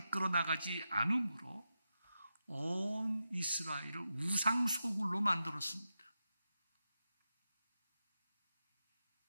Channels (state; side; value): inverted; both; correlation -0.89